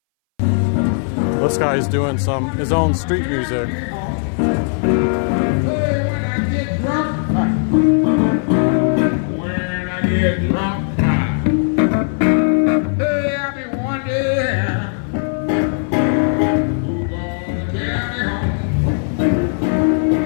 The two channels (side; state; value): right; silent; 63 dB below the other